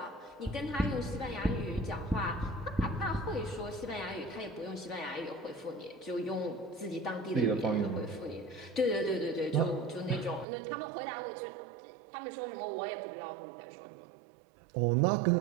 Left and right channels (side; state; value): left; drops out; at 10.5 s